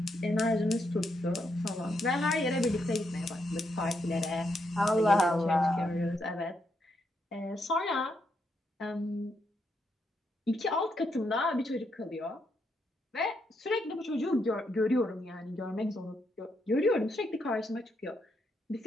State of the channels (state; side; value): normal; both; correlation 0.79